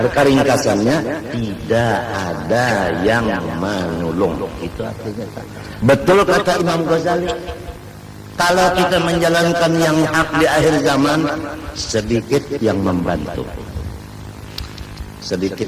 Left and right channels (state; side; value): identical; both; correlation 1.00